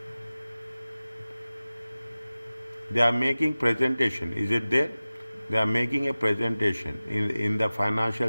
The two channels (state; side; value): inverted; both; correlation -0.97